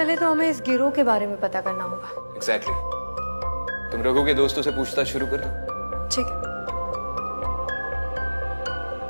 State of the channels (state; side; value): inverted; both; correlation -1.00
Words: तो हमें इस गिरोह के बारे में पता करना होगा। एग्जैक्टली। तुम रघु के दोस्तों से पूछताछ शुरू कर दो। ठीक है।